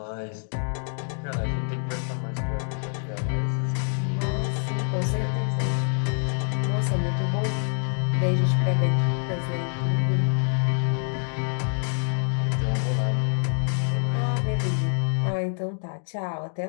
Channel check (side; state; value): right; silent; 55 dB below the other